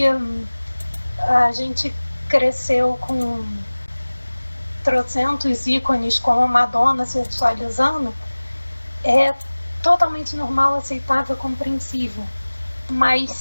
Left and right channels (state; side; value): inverted; both; correlation -1.00